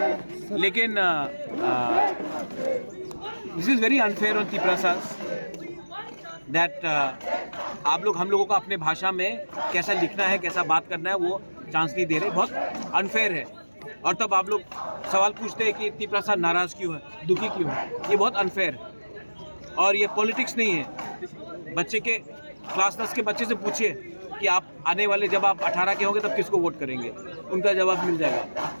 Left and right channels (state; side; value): inverted; both; correlation -1.00